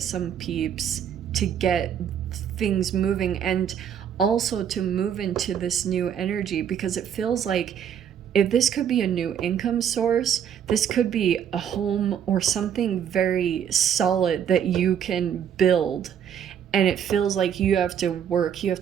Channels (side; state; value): left; quieter; 8.8 dB